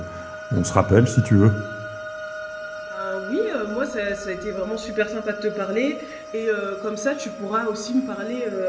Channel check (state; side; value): identical; both; correlation 1.00